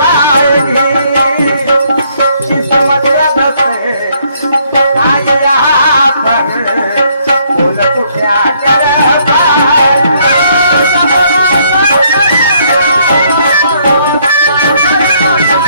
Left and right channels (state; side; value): inverted; both; correlation -0.68